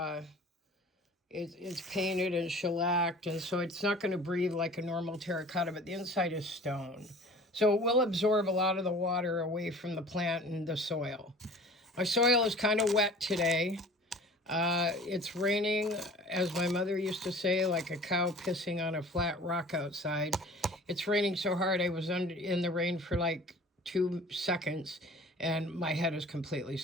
it's painted and shellacked, and so it's not going to breathe like a normal terracotta, but the inside is stone. So it will absorb a lot of the water away from the plant and the soil. My soil is kind of wet today. It's raining, as my mother used to say, like a cow pissing on a flat rock outside. It's raining so hard I was in the rain for like 2 seconds, and my head is completely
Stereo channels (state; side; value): normal; both; correlation 0.45